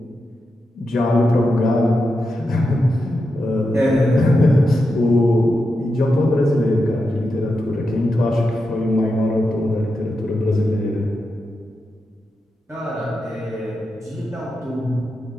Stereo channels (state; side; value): normal; both; correlation 0.88